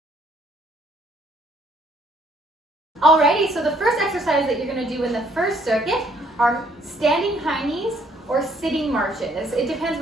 Alrighty, so the first exercise that you're going to do in the first circuit are standing high knees or sitting marches. It depends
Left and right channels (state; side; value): normal; both; correlation 0.65